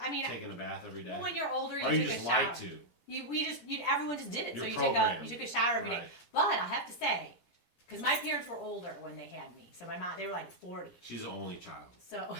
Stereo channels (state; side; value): late; right; 17 ms